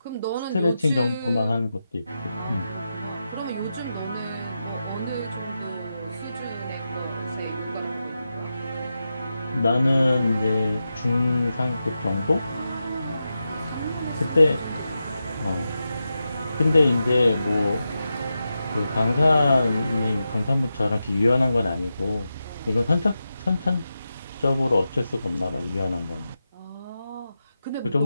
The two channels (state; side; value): inverted; both; correlation -0.90